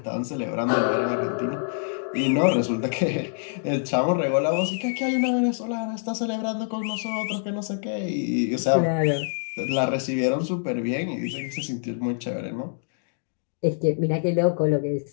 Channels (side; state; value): right; silent; digital silence